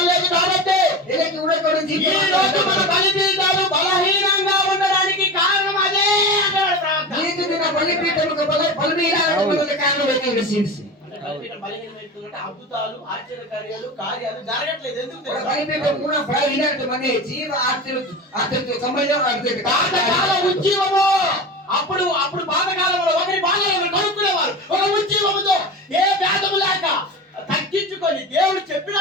లేదు కాబట్టి ఇలకి ఉండక ఈ రోజు మన బలిపీఠాలు బలహీనంగా ఉండడానికి కారణం అదే అంటాడు ప్రార్థన. నీకు దిన బలిపీఠముకు బలిపీఠములకు కారణం ఏంటి రసీసి అంటే బలిపీఠం బలహీనమైపోతుందంటే అద్భుతాలు ఆశ్చర్యకార్యాలు కార్యాలు జరగట్లేదు. ఎందుకు తెలుసా? బలిపీఠం కూడా బలహీనత మనే జీవ ఆశ్చర్య సంబంధం అర్థం పాతకాల ఉజ్జీవము. అప్పుడు పాతకాలంలో ఒకరి బాధలు ఒకరు కనుక్కునేవారు. ఒక ఉజ్జీవముతో ఏ భేదము లేక తగ్గించుకొని దేవుడు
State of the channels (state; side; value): normal; both; correlation 0.28